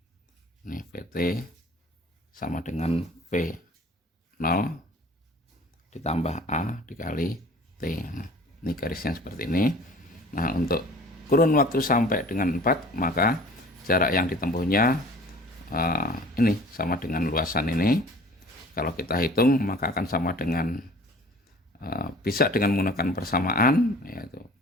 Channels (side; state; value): both; normal; correlation 0.47